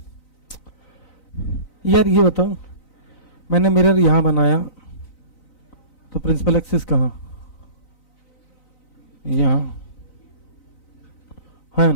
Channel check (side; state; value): right; late; 3.9 ms